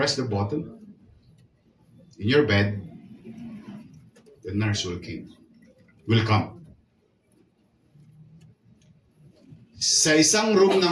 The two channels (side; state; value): both; identical; correlation 1.00